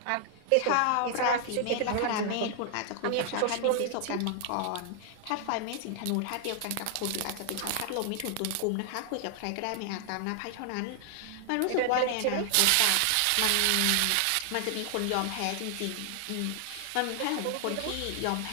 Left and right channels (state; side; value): different; both; correlation 0.00